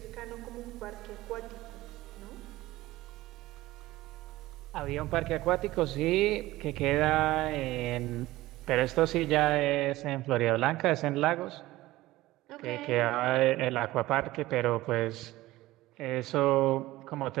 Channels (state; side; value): quieter; left; 17.5 dB